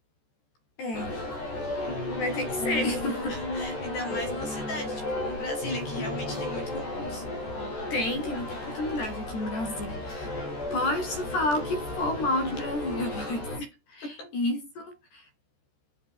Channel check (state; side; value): late; right; 14 ms